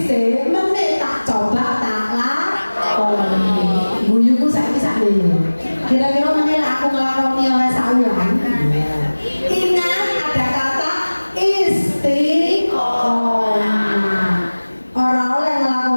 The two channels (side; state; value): both; inverted; correlation -1.00